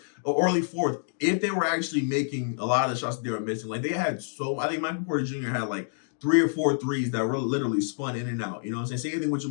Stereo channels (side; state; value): right; silent; digital silence